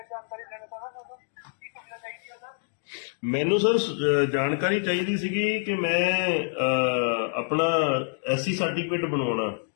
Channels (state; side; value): silent; right; digital silence